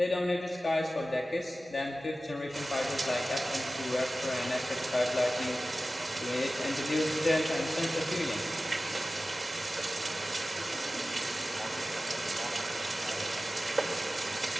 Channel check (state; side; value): normal; both; correlation 0.96